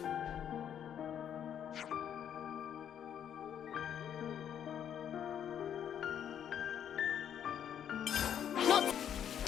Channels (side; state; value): right; quieter; 9.3 dB